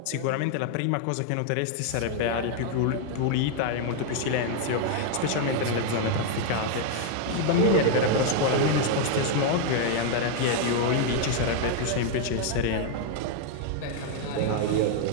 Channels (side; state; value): both; different; correlation 0.00